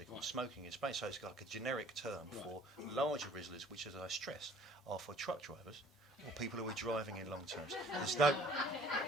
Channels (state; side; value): normal; both; correlation 0.54